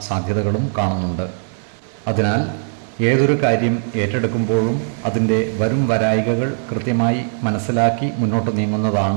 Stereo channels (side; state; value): left; silent; digital silence